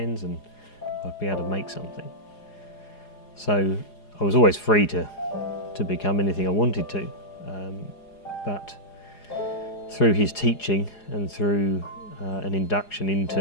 and I'd be able to make something. So I was always free to become anything I wanted to, but through his teaching and through an induction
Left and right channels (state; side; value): late; right; 4.8 ms